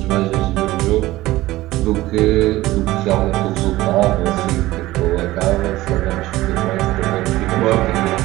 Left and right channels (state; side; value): quieter; left; 17.4 dB